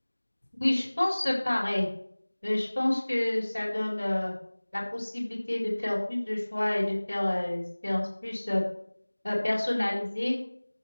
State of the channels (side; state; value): both; inverted; correlation -1.00